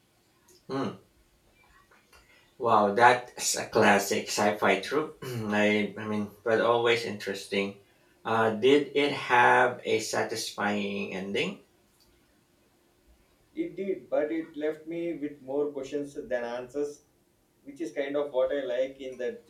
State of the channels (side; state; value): both; identical; correlation 1.00